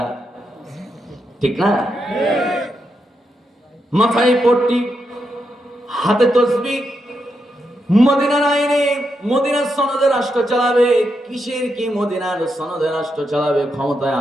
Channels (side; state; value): both; normal; correlation 0.83